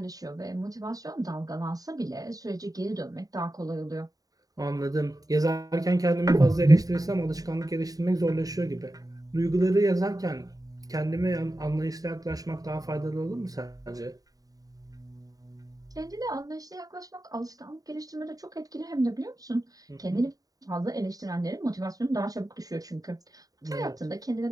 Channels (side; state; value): left; late; 0.18 ms